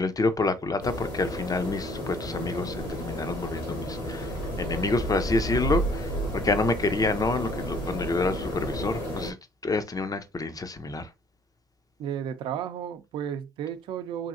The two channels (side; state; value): both; normal; correlation 0.58